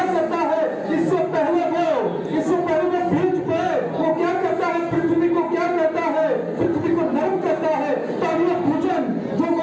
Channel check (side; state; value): both; identical; correlation 1.00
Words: करता है, इससे पहले वो बीज पे वो क्या करता है, पृथ्वी को क्या करता है, पृथ्वी को नरम करता है ताकि ये भोजन जो